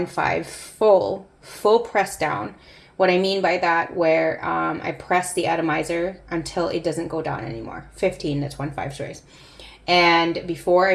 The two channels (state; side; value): identical; both; correlation 1.00